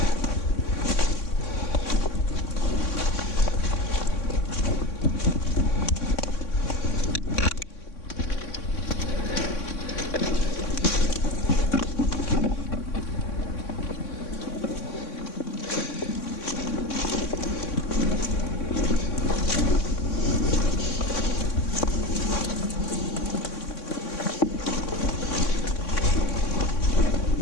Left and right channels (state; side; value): late; right; 3.6 ms